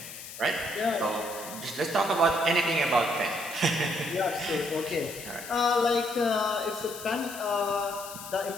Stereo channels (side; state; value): left; noise; hiss, 12 dB below the sound